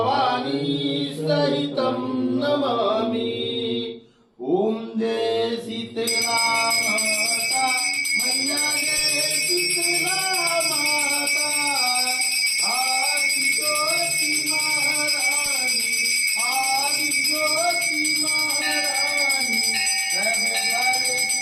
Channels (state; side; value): identical; both; correlation 1.00